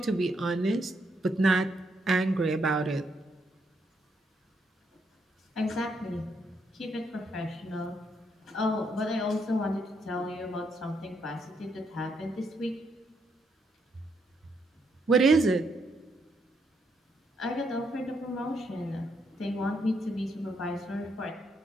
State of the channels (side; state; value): both; normal; correlation 0.76